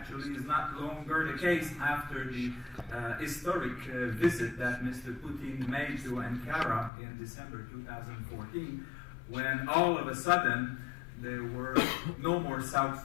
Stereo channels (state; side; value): drops out; right; at 6.9 s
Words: is not longer the case after the historic visit that Mr. Putin made to Ankara in December 2014, when all of a sudden there were no more